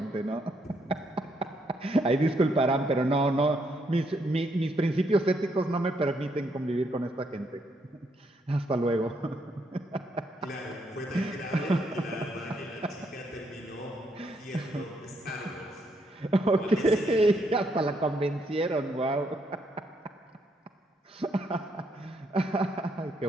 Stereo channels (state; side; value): normal; both; correlation 0.74